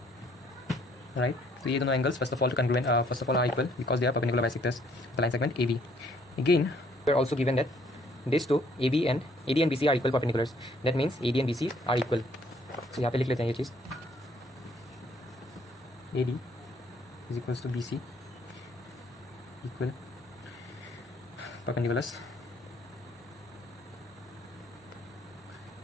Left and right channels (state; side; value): normal; both; correlation 0.63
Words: right. तो ये दोनों angles first of all are equal because they are perpendicular bisectors the line segment A B. Again we are also given that this two A D and B C are equal perpendiculars. That means A D and B C are equal. So यहाँ पे लिख लेते हैं ये चीज़. A D is equals to B C equal perpendiculars.